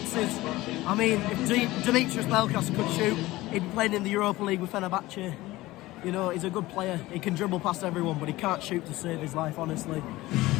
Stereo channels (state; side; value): quieter; right; 18.4 dB